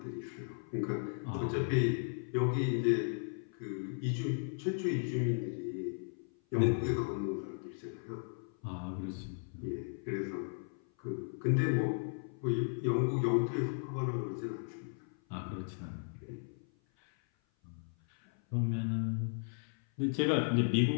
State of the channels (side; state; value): right; silent; 54 dB below the other